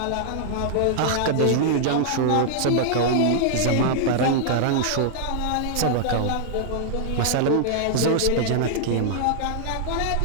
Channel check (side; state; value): both; different; correlation -0.01